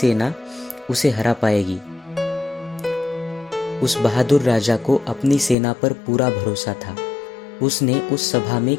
उसे हरा पाएगी। उस बहादुर राजा को अपनी सेना पर पूरा भरोसा था। उसने उस सभा में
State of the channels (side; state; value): right; drops out; at 5.6 s